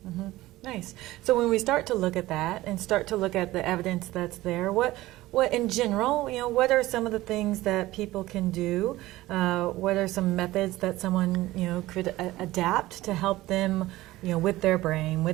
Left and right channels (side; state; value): left; quieter; 17.4 dB